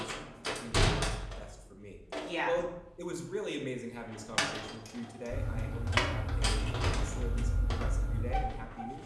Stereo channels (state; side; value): identical; both; correlation 1.00